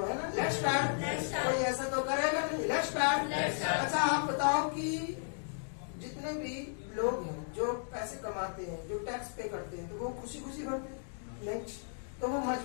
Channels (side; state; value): right; silent; digital silence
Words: है ना। Let's start. कोई ऐसा तो करेगा नहीं। Let's start. अच्छा आप बताओ कि जितने भी लोग हैं जो पैसे कमाते हैं, जो टैक्स पे करते हैं, तो वो खुशी खुशी भरते हैं? नहीं, तो वो